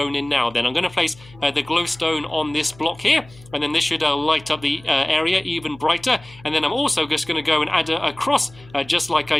in now. Then I'm going to place the glowstone on this block here, and then this should light up the area even brighter. And then I'm also just going to go and add a cross, just like I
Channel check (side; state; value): left; noise; hum, 23 dB below the sound